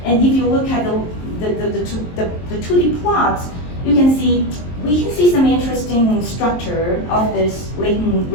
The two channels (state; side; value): late; right; 23 ms